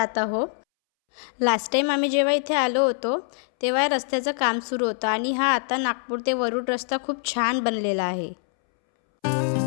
आहोत. लास्ट टाईम आम्ही जेव्हा इथे आलो होतो तेव्हा रस्त्याचं काम सुरू होतं आणि हा आता नागपूर ते वरुड रस्ता खूप छान बनलेला आहे.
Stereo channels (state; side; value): silent; right; 62 dB below the other